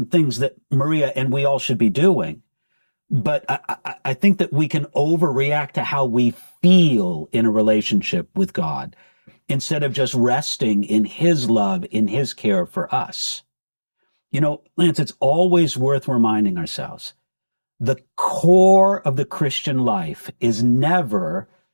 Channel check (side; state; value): both; inverted; correlation -1.00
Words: things that Maria and we all should be doing. But I think that we can overreact to how we feel in a relationship with God instead of just resting in His love, in His care for us. You know, Lance, it's always worth reminding ourselves, the core of the Christian life is never